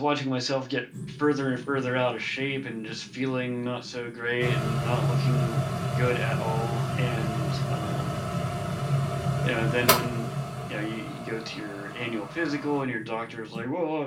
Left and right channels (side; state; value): both; identical; correlation 1.00